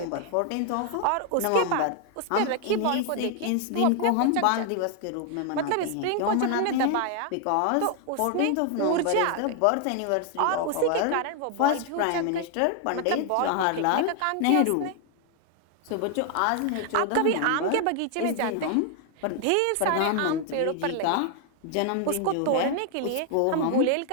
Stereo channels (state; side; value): different; both; correlation 0.00